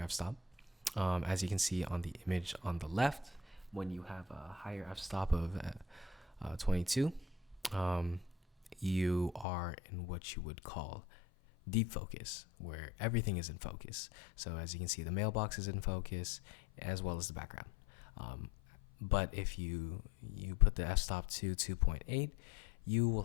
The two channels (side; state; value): right; drops out; at 9.5 s